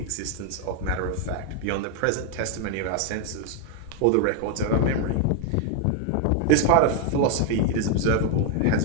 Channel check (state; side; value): different; both; correlation 0.00